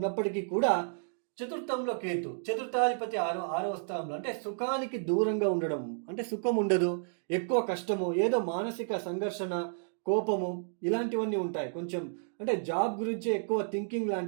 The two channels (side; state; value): left; silent; digital silence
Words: కూడా చతుర్థంలో కేతు, చతుర్థాధిపతి ఆరవ స్థానంలో, అంటే సుఖానికి దూరంగా ఉండడం, అంటే సుఖం ఉండదు, ఎక్కువ కష్టము, ఏదో మానసిక సంఘర్షణ, కోపము ఇలాంటివన్నీ ఉంటాయి. కొంచెం అంటే జాబ్ గురించి ఎక్కువ థింకింగ్